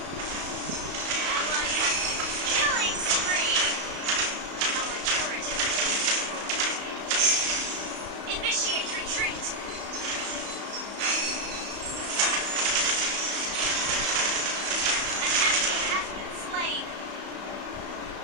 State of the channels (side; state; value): left; late; 34 ms